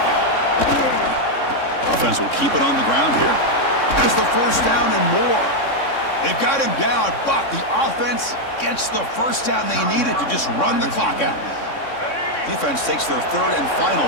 Offense will keep it on the ground here. There's the 1st down and more. They've got him down, but the offense gets the 1st down they needed to just run the clock out. Defense takes their 3rd and final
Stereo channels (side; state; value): right; late; 3.6 ms